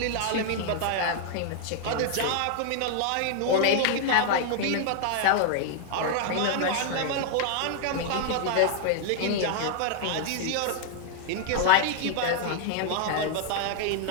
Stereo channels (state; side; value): different; both; correlation 0.00